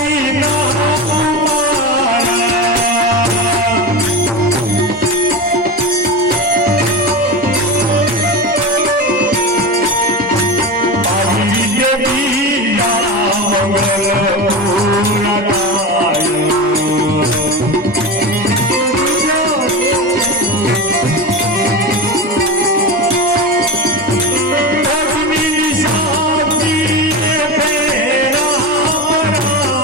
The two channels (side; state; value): both; normal; correlation 0.23